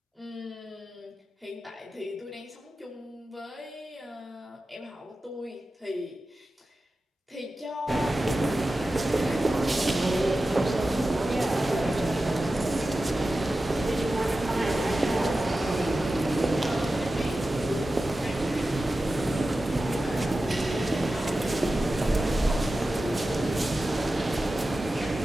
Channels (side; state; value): both; normal; correlation 0.93